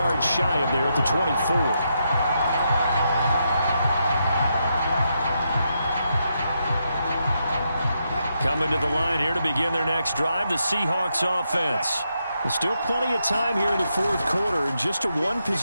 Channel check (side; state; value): both; inverted; correlation -0.82